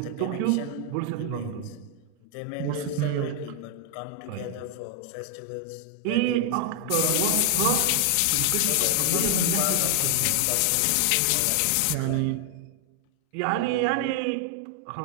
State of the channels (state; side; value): different; both; correlation 0.00